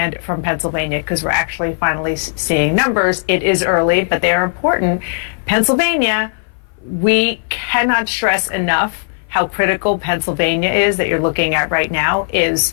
from Pennsylvania, because we're actually finally seeing numbers. It is early, but they are important. Pennsylvania, we cannot stress enough how critical Pennsylvania is, that you're looking at right now,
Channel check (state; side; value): silent; right; 58 dB below the other